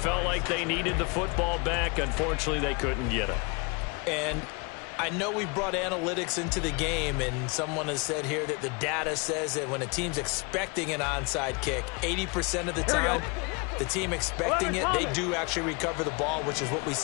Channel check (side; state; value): right; quieter; 30.3 dB